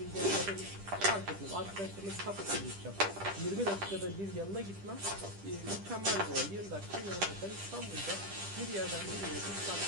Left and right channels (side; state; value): left; late; 10 ms